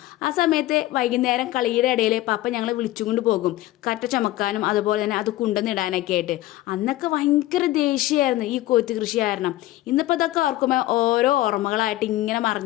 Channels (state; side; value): quieter; right; 16.2 dB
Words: ആ സമയത്ത് വൈകുന്നേരം കളിയുടെ ഇടയിൽ പപ്പ ഞങ്ങളെ വിളിച്ചുകൊണ്ട് പോകും കറ്റ ചമക്കാനും അതുപോലെ തന്നെ അത് കുണ്ടെന്നിടാനൊക്കെ ആയിട്ട്. അന്നൊക്കെ ഭയങ്കര ദേഷ്യമായിരുന്നു ഈ കൊയ്ത്ത് കൃഷി കാരണം. ഇന്നിപ്പോൾ അതൊക്കെ ഓർക്കുമ്പോൾ ഓരോ ഓർമ്മകളായിട്ട് ഇങ്ങനെ